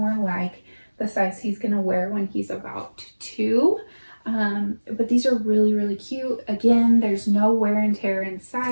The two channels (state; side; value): inverted; both; correlation -1.00